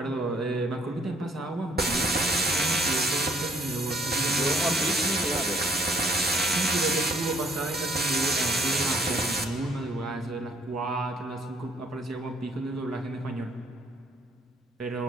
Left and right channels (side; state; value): both; normal; correlation 0.62